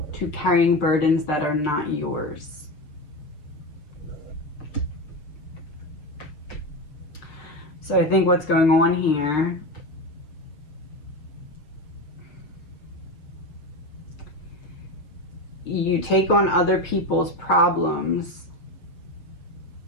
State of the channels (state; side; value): late; right; 6.6 ms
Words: to carrying burdens that are not yours. So I think what's going on here you take on other people's problems